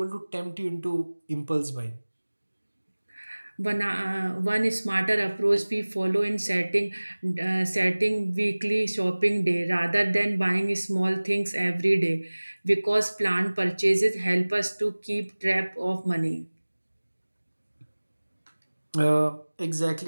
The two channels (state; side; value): inverted; both; correlation -1.00